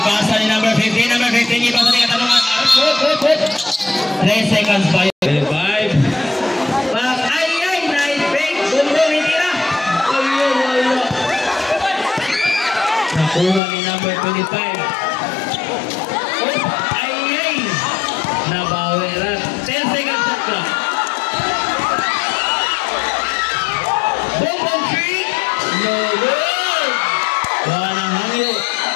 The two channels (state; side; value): drops out; right; at 13.6 s